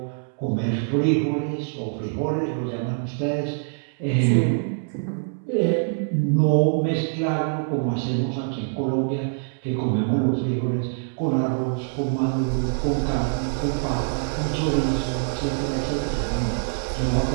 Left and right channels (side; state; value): left; silent; 62 dB below the other